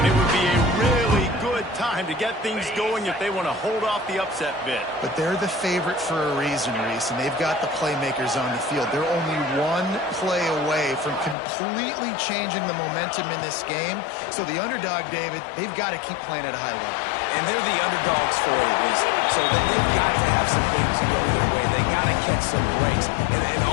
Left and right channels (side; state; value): right; drops out; at 11.4 s